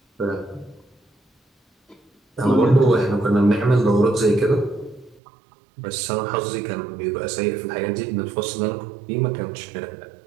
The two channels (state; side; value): drops out; left; at 5.2 s